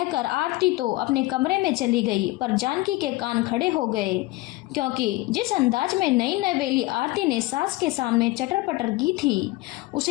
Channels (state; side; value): quieter; right; 19.9 dB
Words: आरती तो अपने कमरे में चली गई, पर जानकी के कान खड़े हो गए, क्योंकि जिस अंदाज में नई नवेली आरती ने सास के सामने चटर पटर की थी